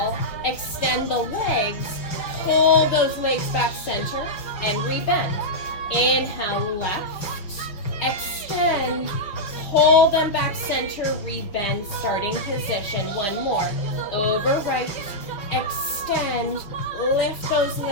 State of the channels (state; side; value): late; right; 5.4 ms